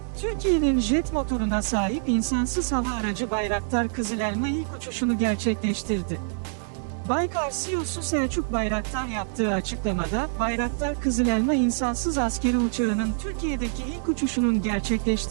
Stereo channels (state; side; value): silent; left; digital silence